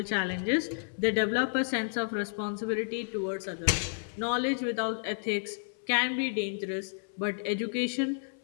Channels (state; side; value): silent; right; 57 dB below the other